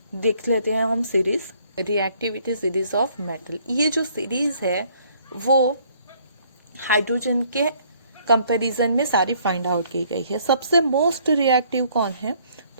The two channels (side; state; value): both; inverted; correlation -0.63